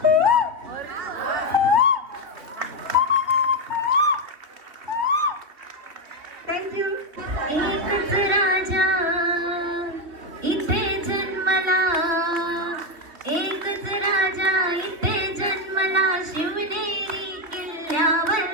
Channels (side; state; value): left; late; 3.2 ms